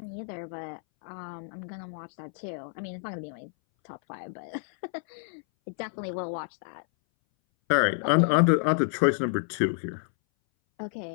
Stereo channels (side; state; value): right; silent; 58 dB below the other